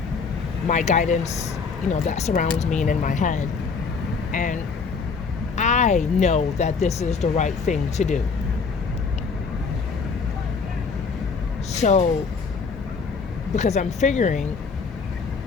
my guidance, that surrounds me and in my head. And I know that this is the right thing to do. So, because I'm figuring,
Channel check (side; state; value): right; quieter; 5.1 dB